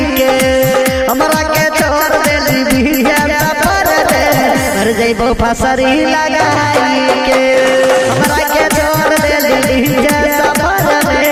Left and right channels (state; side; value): identical; both; correlation 1.00